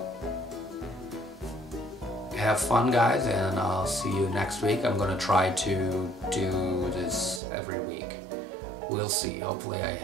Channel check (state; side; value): drops out; left; at 7.4 s